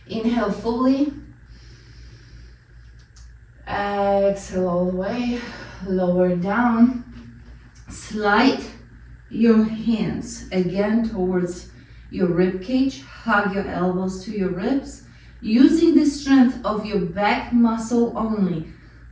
Inhale fully. Exhale all the way. Lower down. Slide your hands again towards your rib cage, hug your elbows to your ribs, using the strength of your back muscle only.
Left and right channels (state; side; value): identical; both; correlation 1.00